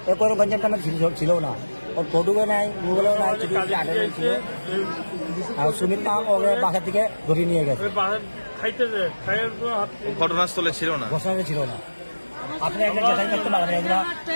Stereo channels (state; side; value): inverted; both; correlation -1.00